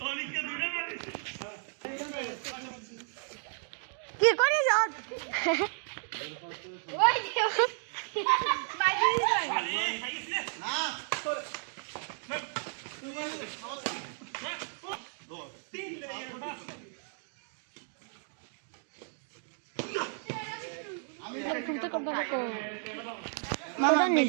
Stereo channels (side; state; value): left; silent; 56 dB below the other